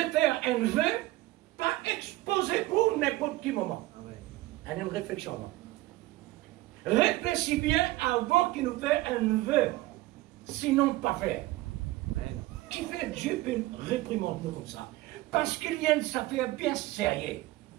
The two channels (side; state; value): left; quieter; 18.4 dB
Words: faire un vœu, pas exposé pour n'importe quel moment. Amen. Une réflexion. Réfléchis bien avant qu'il nous fait un vœu, sinon pas faire. Amen. Qui fait Dieu peut réprimander nous comme ça? Parce qu'il y a une affaire bien sérieuse.